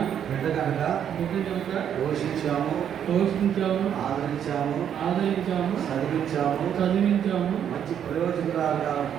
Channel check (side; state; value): left; quieter; 9.1 dB